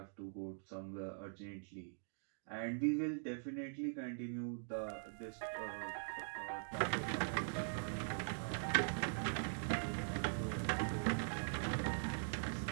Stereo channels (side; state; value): left; silent; digital silence